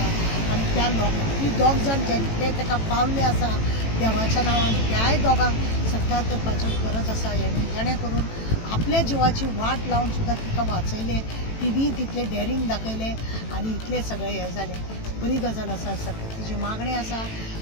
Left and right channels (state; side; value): late; right; 18 ms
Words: आनी त्या ती दोग जाण जे ताका पावल्ले आसा देवाच्या नांवान त्याय दोगांक सत्कार करपाचो गरज आसा जेणे करून आपल्या जिवाची वाट लावन सुद्दां तिका वाचयले तिणी तितले डेरींग दाखयले आनी इतले सगळे हे जाले बरी गजाल आसा सरकार तिची मागणी आसा